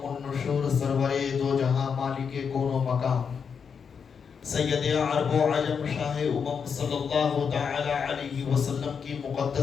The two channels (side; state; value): right; quieter; 6.4 dB